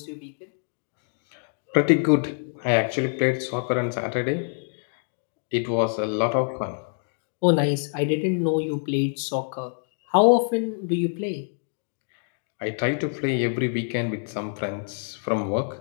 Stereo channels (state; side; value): silent; right; 61 dB below the other